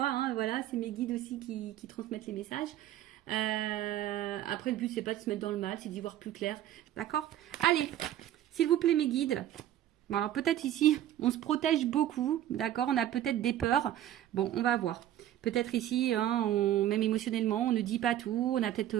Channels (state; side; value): quieter; left; 12.2 dB